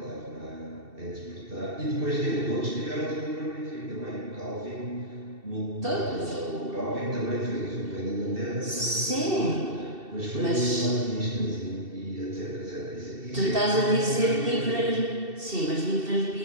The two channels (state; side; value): late; left; 2.7 ms